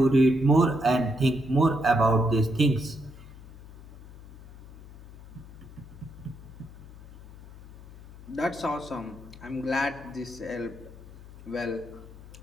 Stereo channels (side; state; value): left; noise; hum, 18 dB below the sound